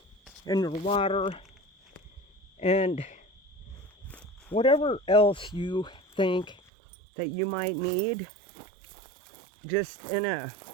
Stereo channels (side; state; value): left; drops out; at 6.6 s